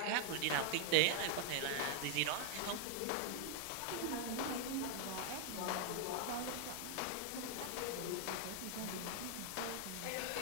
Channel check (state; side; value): different; both; correlation 0.00